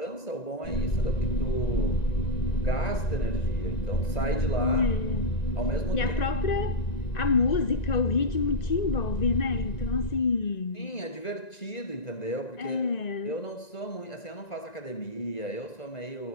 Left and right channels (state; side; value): late; right; 1.9 ms